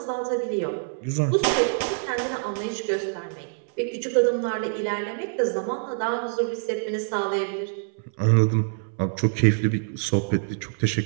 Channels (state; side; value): silent; left; 61 dB below the other